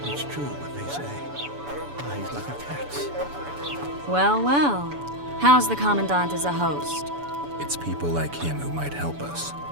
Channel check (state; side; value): late; left; 7.0 ms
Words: It's true what they say. Eyes like a cat's. Well, well. How's the Commandant as a host? It's people like him who might help us.